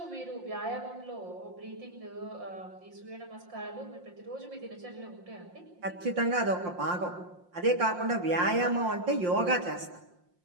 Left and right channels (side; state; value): left; late; 5.7 ms